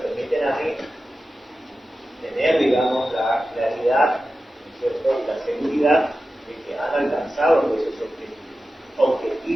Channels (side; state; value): both; normal; correlation 0.93